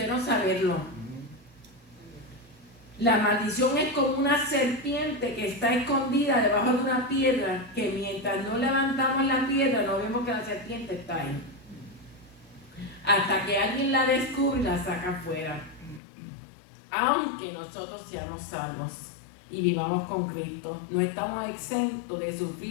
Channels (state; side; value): drops out; right; at 16.0 s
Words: no saberlo. La maldición es como una serpiente que está escondida debajo de una piedra, que mientras no levantamos la piedra no vemos que la serpiente está ahí. Hasta que alguien la descubre y la saca afuera. Aunque nosotros seamos salvos y vivamos con Cristo, no estamos exentos de